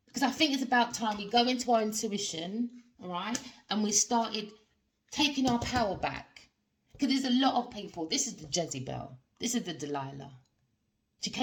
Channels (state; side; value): identical; both; correlation 1.00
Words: Because I think it's about time we go into our intuition, all right, and we started taking our power back. Because there's a lot of people. This is the Jezebel. This is the Delilah. She